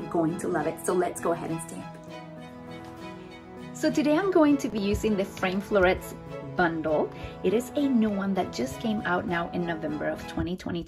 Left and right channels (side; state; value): both; identical; correlation 1.00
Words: going to love it. So let's go ahead and stamp. So today I'm going to be using the frame florets bundle. It is a new one that just came out now in November of